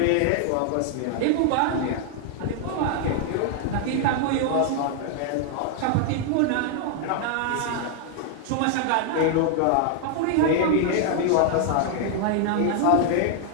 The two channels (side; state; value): both; different; correlation 0.00